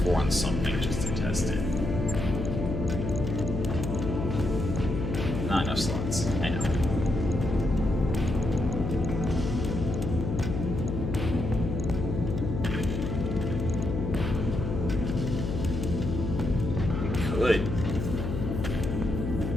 4 on something just to test it. Not enough slots. I know. Good.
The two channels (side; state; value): left; noise; hum, 3 dB below the sound